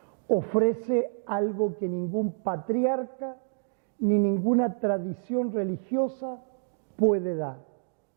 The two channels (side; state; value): left; silent; digital silence